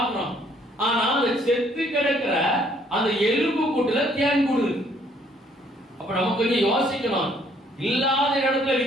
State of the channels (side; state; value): both; normal; correlation 0.64